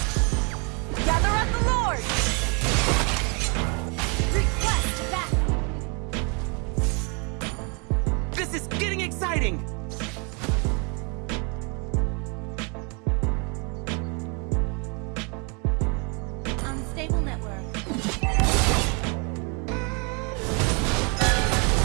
Gather up the Lord. Request back. This is getting exciting.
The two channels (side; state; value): left; quieter; 34.1 dB